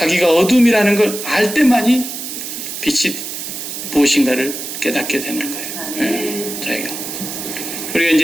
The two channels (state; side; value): noise; right; hiss, 7 dB below the sound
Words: 어둠이라는 걸 알 때만이 빛이 무엇인가를 깨닫게 되는 거예요. 예, 자기가. 우리가